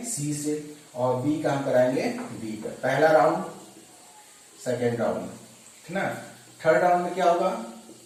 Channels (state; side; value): identical; both; correlation 1.00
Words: सी से, और बी का हम कराएंगे बी का। पहला राउंड, सेकेंड राउंड, ठीक ना। थर्ड राउंड में क्या होगा,